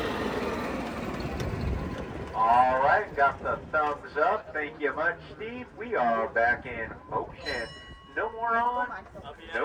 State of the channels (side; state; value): both; identical; correlation 1.00